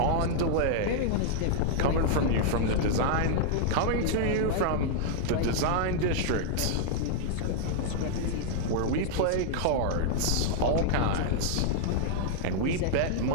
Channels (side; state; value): both; different; correlation -0.01